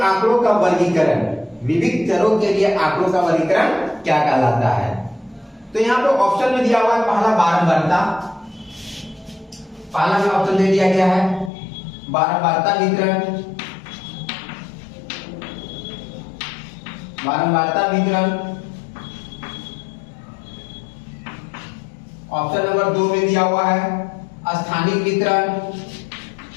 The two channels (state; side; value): drops out; right; at 11.5 s